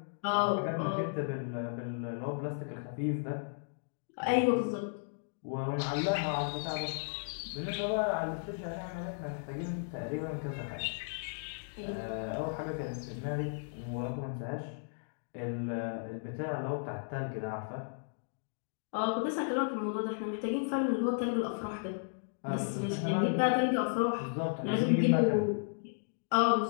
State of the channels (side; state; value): right; silent; digital silence